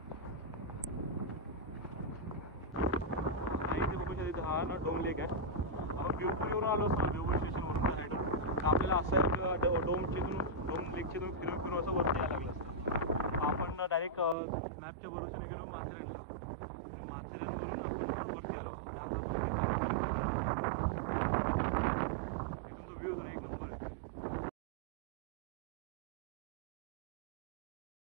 हा ना डोम लेक आहे. आपण भिवपूरवरून आलो असतो ना, भिवपूर स्टेशनवरून त्या साईडून आपल्याला असं डोम लेकच्या फिरून असं वरती यायला लागलं असतं. आपण डायरेक्ट मॅपच्या भरोशाने गेलो माथेरानला. माथेरान वरती आलो. इथून तो व्ह्यू तर एक नंबर आहे.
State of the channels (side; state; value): left; drops out; at 14.4 s